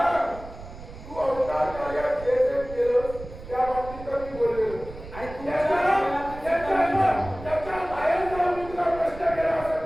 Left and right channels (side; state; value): right; noise; rumble, 14 dB below the sound